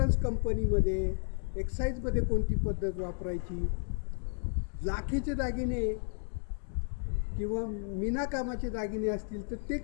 कंपनीमध्ये, एक्साईजमध्ये कोणती पद्धत वापरायची, लाखेचे दागिने किंवा मीनाकामाचे दागिने असतील तर ते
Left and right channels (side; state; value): right; silent; 56 dB below the other